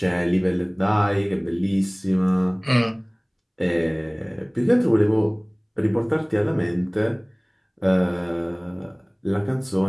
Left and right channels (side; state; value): both; identical; correlation 1.00